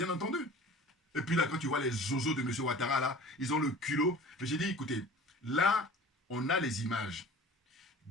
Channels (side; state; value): both; normal; correlation 0.43